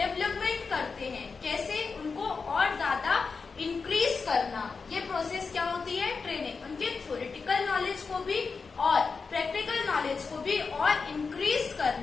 करते हैं। कैसे? उनको और ज्यादा इंक्रीज करना। ये प्रोसेस क्या होती है? ट्रेनिंग। उनके थ्योरेटिकल नॉलेज को भी और प्रैक्टिकल नॉलेज को भी और इंक्रीज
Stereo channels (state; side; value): quieter; right; 4.9 dB